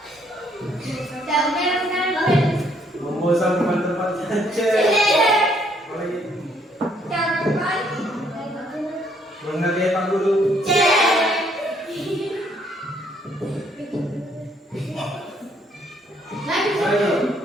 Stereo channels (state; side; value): normal; both; correlation 0.68